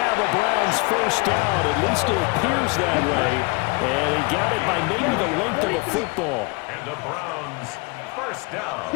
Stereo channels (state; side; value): quieter; right; 28.7 dB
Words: a Browns 1st down. At least it appears that way. And he got it by maybe the length of a football. And the Browns 1st